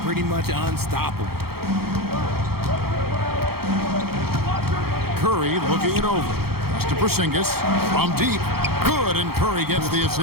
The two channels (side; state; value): left; late; 0.95 ms